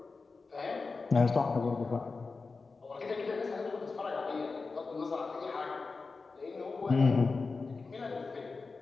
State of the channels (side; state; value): right; quieter; 4.2 dB